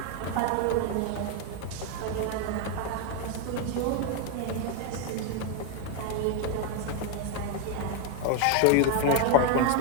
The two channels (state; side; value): different; both; correlation 0.01